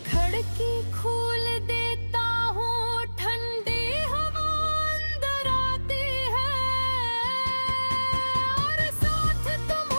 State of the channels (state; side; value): inverted; both; correlation -1.00